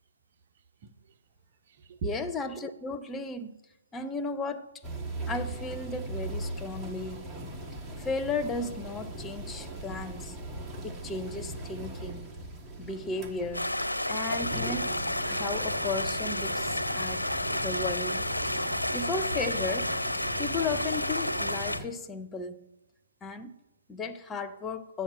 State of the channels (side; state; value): both; inverted; correlation -0.40